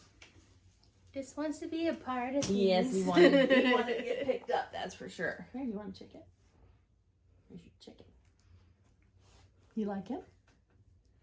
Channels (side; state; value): both; identical; correlation 1.00